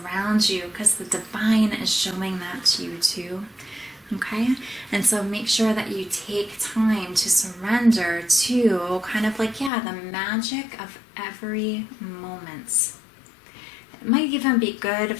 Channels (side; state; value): right; drops out; at 9.7 s